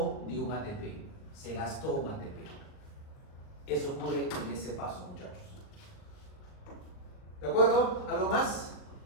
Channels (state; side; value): late; right; 39 ms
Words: de un ATP. Se gastó un ATP. Eso ocurre en ese paso, muchachos. ¿De acuerdo? ¿Algo más?